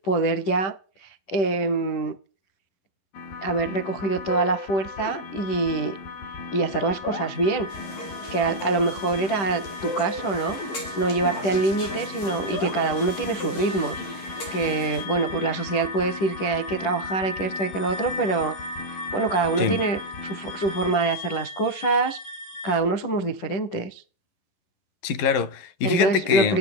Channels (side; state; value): right; late; 11 ms